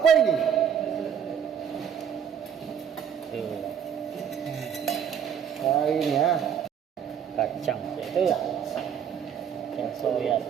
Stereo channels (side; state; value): left; quieter; 8.4 dB